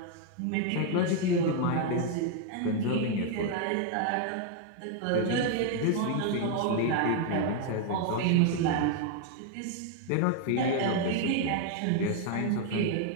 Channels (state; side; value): different; both; correlation 0.00